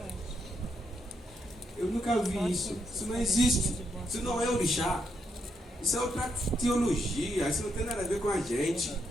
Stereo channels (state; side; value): normal; both; correlation 0.79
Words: Eu nunca vi isso. Isso não existe. Isso não é orixá. Isso é outra teologia. Isso não tem nada a ver com a gente.